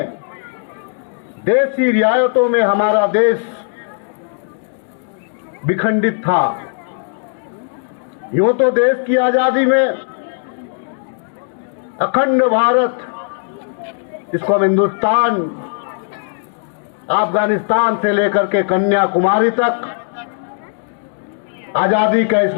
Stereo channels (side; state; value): right; silent; digital silence